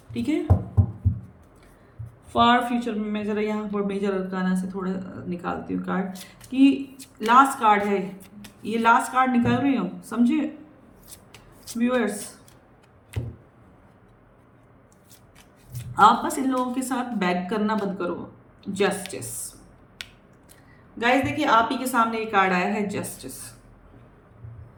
ठीक है, फार फ्यूचर में मैं जरा यहाँ पर मेजर अरकाना से थोड़ा निकालती हूँ कार्ड, कि लास्ट कार्ड है ये, लास्ट कार्ड निकाल रही हूँ, समझे व्यूअर्स? आप बस इन लोगों के साथ बैक करना बंद करो। जस्टिस गाइस, देखिए आप ही के सामने ये कार्ड आया है, जस्टिस।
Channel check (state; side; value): identical; both; correlation 1.00